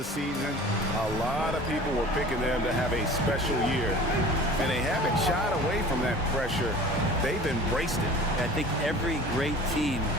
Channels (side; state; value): both; normal; correlation 0.42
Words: season. A lot of people were picking them to have a special year. And they haven't shied away from that pressure. They've embraced it. I think every great team